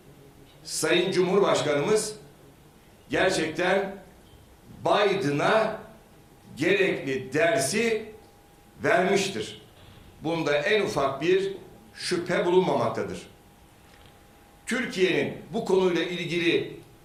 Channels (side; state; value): both; identical; correlation 1.00